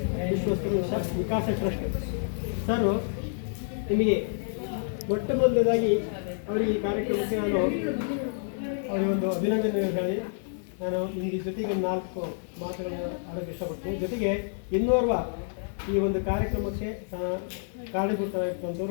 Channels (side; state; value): right; silent; digital silence